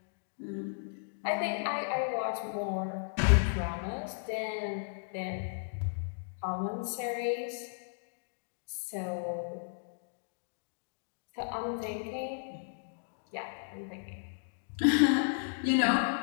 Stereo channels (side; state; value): right; silent; digital silence